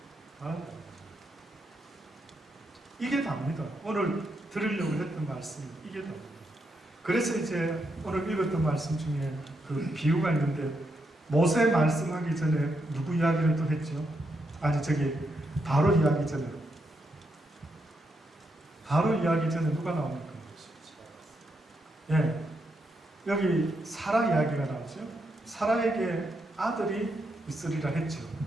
바란다. 이게 답니다. 오늘 들으려고 했던 말씀이 이게 답니다. 그래서 이제 오늘 읽었던 말씀 중에 그 비유가 있는데 모세 말씀하기 전에 누구 이야기를 또 했죠? 아니 저기 바로 이야기 전에 누가 나옵니까? 예, 여기 사라 이야기가 나오죠. 사라에게 아들이 있으리라 했죠.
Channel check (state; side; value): normal; both; correlation 0.81